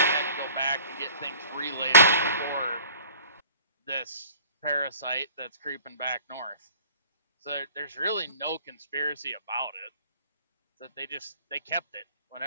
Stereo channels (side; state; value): both; inverted; correlation -0.48